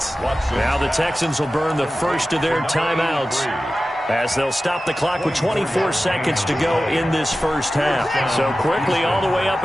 Now the Texans will burn the first of their timeouts, as they'll stop the clock with 24 seconds to go in this first half. So quickly all the way up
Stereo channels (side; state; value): both; normal; correlation 0.95